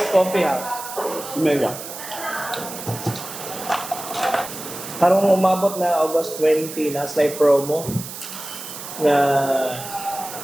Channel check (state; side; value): noise; right; hiss, 10 dB below the sound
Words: coffee ha. Mega. Karong umabot na August 20 na slide promo na